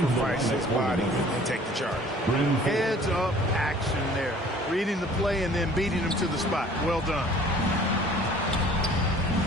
his body and take the charge. Heads-up action there. Reading the play and then beating him to the spot. Well done.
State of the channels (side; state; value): both; normal; correlation 0.51